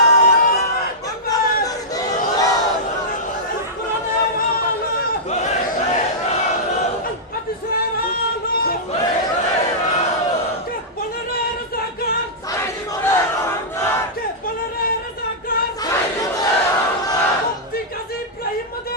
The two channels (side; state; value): both; normal; correlation -0.13